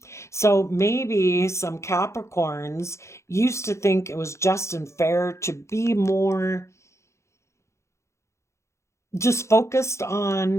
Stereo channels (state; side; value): late; right; 0.14 ms